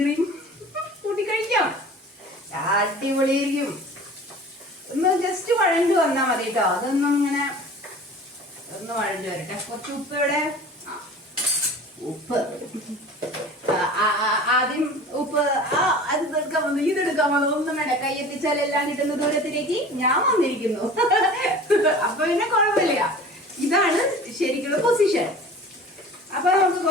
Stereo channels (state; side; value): normal; both; correlation 0.41